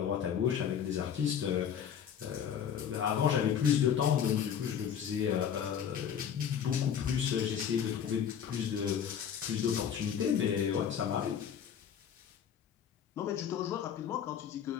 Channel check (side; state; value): right; quieter; 8.4 dB